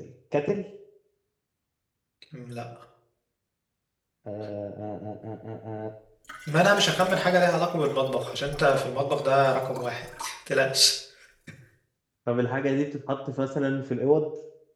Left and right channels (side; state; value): both; identical; correlation 1.00